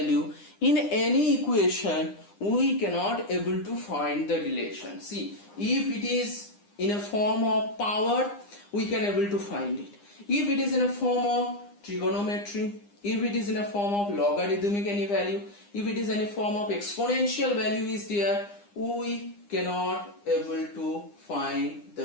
in any equation. We cannot able to find the relation. See, if it is in a form of power, we can able to find it. If it is in a form of trigonometry, if it is in a form of logarithmic any value, if it is in a form of exponential value is there, we cannot able to find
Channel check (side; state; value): right; late; 9.9 ms